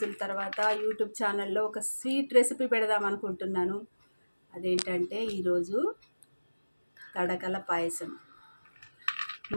తర్వాత యూట్యూబ్ ఛానల్లో ఒక స్వీట్ రెసిపీ పెడదాం అనుకుంటున్నాను. అదేంటంటే ఈరోజు తడకల పాయసం.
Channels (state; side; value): inverted; both; correlation -1.00